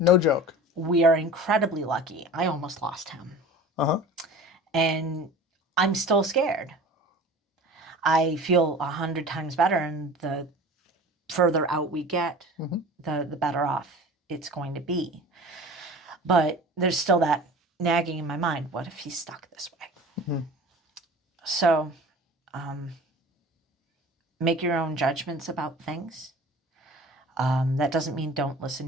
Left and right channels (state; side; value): normal; both; correlation 0.40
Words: No joke. We are incredibly lucky. I almost lost him. Uh-huh. And I'm still scared. I feel 100 times better, and the further out we get, the better off it's going to be. But there's still that nagging in my mind. What if he's stuck this way? So make your own judgments about things. That doesn't mean don't